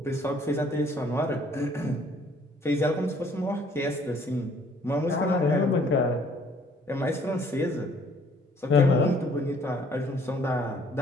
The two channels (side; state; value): both; normal; correlation 0.60